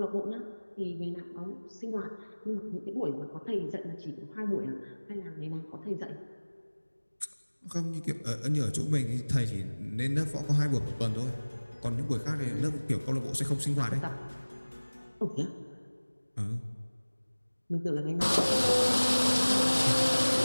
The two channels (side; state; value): both; inverted; correlation -1.00